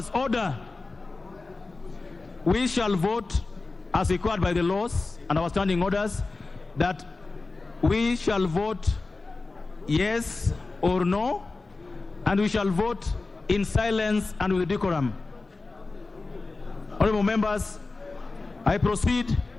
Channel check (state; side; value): quieter; right; 3.6 dB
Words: order. We shall vote as required by the laws and our standing orders that we shall vote yes or no, and we shall vote in silence and with decorum. Honorable members, I proceed